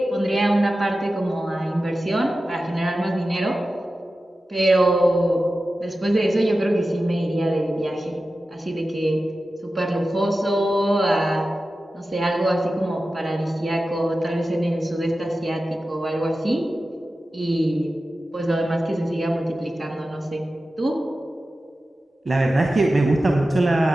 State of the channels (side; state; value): both; normal; correlation 0.94